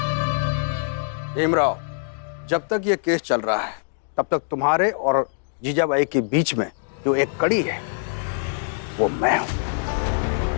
भीमराव, जब तक ये केस चल रहा है तब तक तुम्हारे और जीजाबाई के बीच में जो एक कड़ी है वो मैं हूं।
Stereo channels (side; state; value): right; silent; digital silence